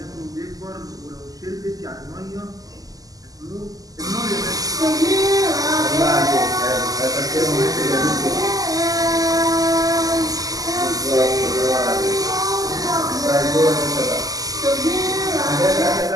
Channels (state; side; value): late; left; 0.17 ms